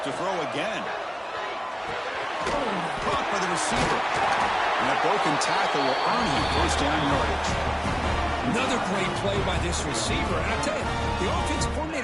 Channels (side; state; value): both; identical; correlation 1.00